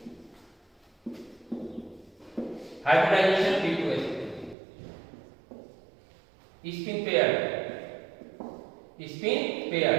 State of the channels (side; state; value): left; drops out; at 4.5 s